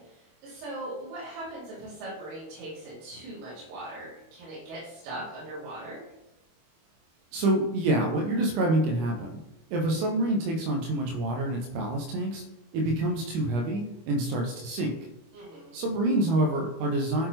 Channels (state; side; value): late; left; 25 ms